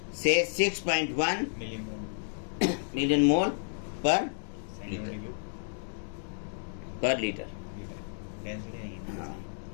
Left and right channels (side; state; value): right; silent; digital silence